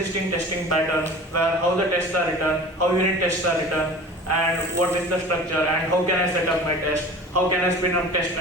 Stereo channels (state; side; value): normal; both; correlation 0.39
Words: testing pattern, where how the tests are written, how unit tests are written, and what is the structure, and how can I set up my test, how can I spin up test